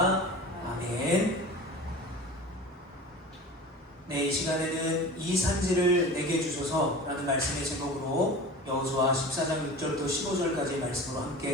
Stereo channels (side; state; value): both; normal; correlation 0.36